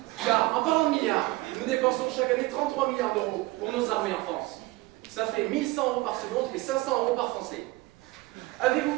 Car en parlant de milliards, nous dépensons chaque année 33 milliards d'euros pour nos armées en France. Ça fait 1100 euros par seconde et 500 euros par Français. Avez-vous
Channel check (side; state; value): left; quieter; 20.8 dB